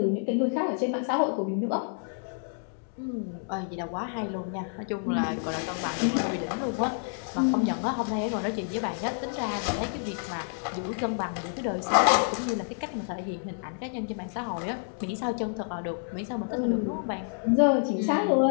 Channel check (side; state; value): right; silent; 59 dB below the other